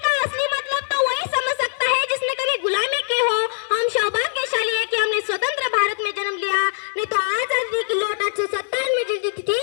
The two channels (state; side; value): silent; right; 59 dB below the other